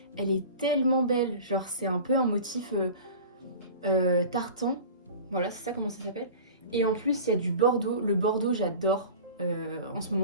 Elle est tellement belle, genre c'est un peu un motif tartan. Voilà, c'est ça comment ça s'appelle. Et en plus, il y a du bordeaux. Le bordeaux, j'adore. en ce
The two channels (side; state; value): both; inverted; correlation -0.38